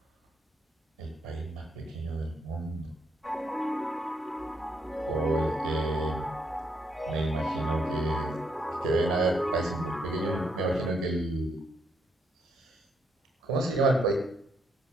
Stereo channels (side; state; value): both; normal; correlation 0.75